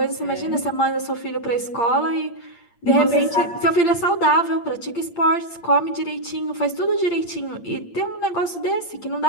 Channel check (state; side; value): late; right; 8.7 ms